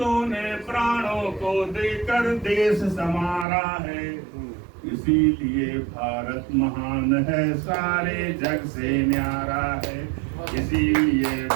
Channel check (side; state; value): left; drops out; at 3.5 s